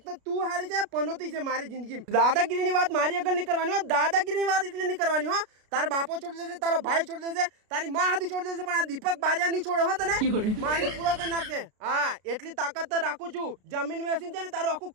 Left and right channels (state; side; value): late; left; 33 ms